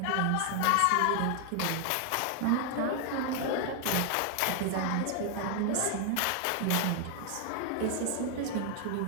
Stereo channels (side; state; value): both; different; correlation 0.00